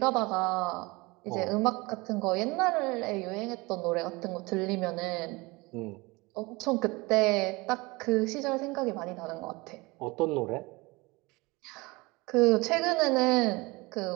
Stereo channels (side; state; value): left; quieter; 24.0 dB